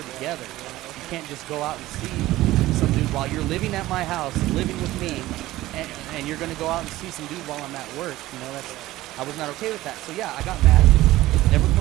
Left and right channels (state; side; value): quieter; left; 16.5 dB